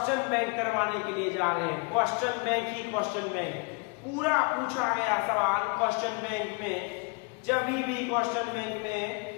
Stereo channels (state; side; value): quieter; right; 31.5 dB